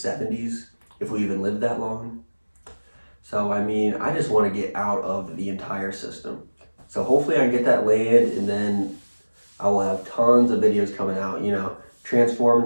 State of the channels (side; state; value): both; inverted; correlation -1.00